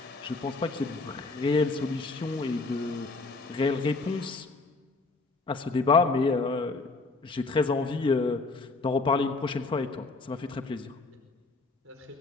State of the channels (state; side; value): quieter; right; 3.7 dB